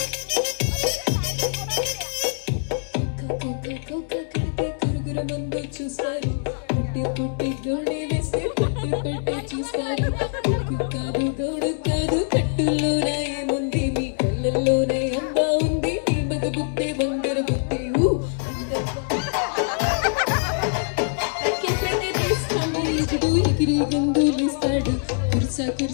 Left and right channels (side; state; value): right; silent; digital silence